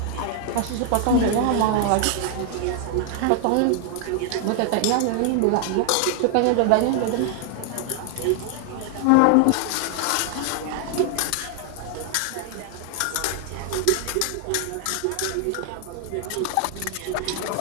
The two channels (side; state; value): both; different; correlation 0.00